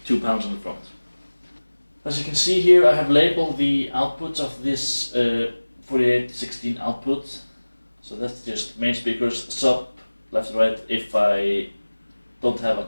2 panels on the front. As you can see here, I have labeled the outputs of this 4816 output. So that's just main speakers, sub, left and right, if I don't have a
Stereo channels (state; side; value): inverted; both; correlation -1.00